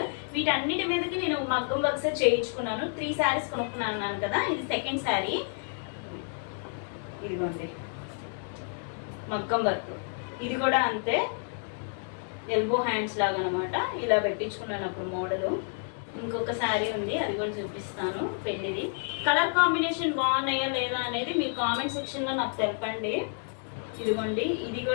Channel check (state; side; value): silent; right; 58 dB below the other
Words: వీటన్నిటి మీదకి నేను మగ్గం వర్క్స్ చేయించుకున్నాను. 3 శారీస్ కొనుక్కున్నాను కదా, ఇది సెకండ్ శారీ. ఇదిగోండి మగ్గం వర్క్, ఇది కూడా అంతే, ఎల్బో హ్యాండ్స్ లాగా అనమాట. ఇలా పెట్టించుకున్నాను అప్పుడు మోడలు. ఇంకొక శారీ ఉంది, అది కూడా చూపిస్తాను పెళ్ళిది. కలర్ కాంబినేషన్ బాగున్నాయా లేదా అనేది మీ కామెంట్ సెక్షన్లో నాకు తెలపండి. ఇదిగోండి ఇది